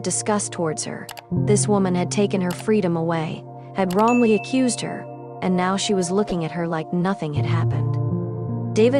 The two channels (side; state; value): both; identical; correlation 1.00